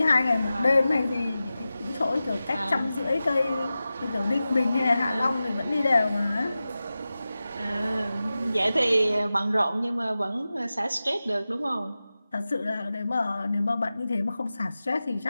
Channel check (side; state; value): both; inverted; correlation -0.95